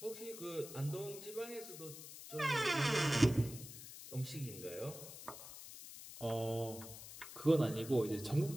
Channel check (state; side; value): noise; left; hiss, 13 dB below the sound